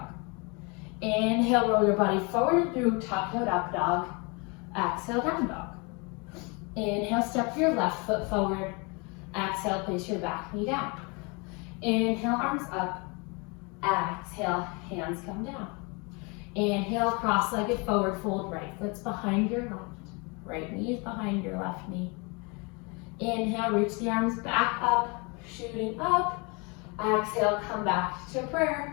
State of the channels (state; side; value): quieter; right; 30.3 dB